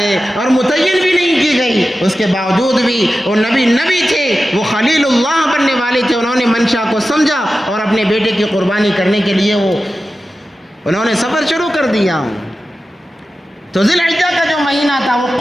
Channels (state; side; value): normal; both; correlation 0.93